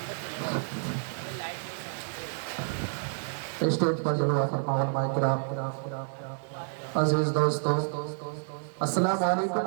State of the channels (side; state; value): left; silent; digital silence